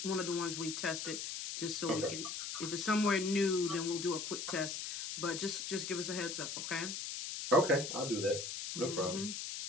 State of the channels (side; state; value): left; noise; hiss, 5 dB below the sound